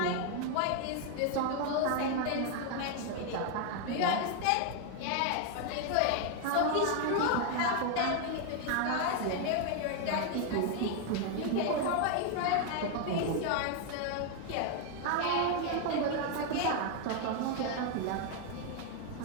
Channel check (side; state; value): both; different; correlation 0.01